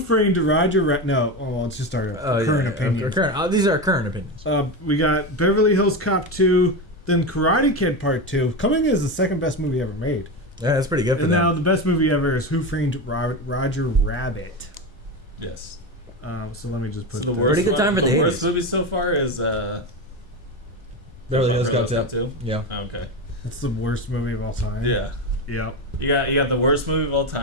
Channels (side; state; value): both; normal; correlation 0.18